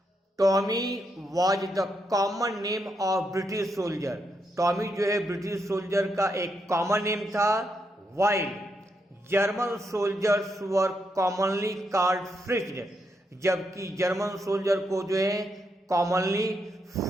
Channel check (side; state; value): both; normal; correlation 0.80